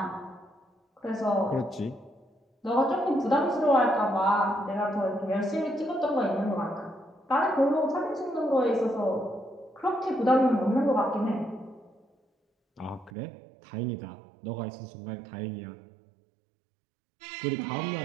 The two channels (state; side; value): drops out; left; at 13.1 s